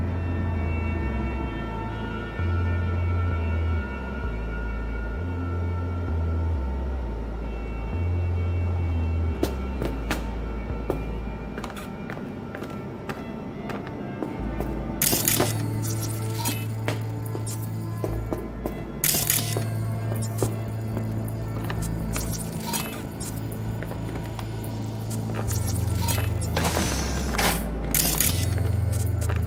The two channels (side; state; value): both; identical; correlation 1.00